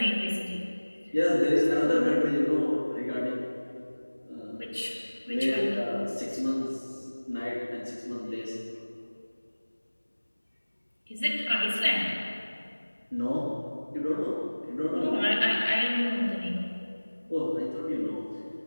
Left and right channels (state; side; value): inverted; both; correlation -1.00